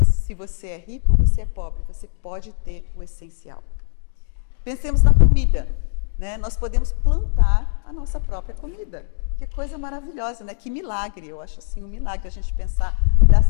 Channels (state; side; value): silent; right; digital silence